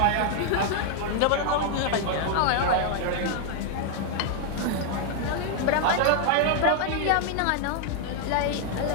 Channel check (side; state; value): both; different; correlation 0.00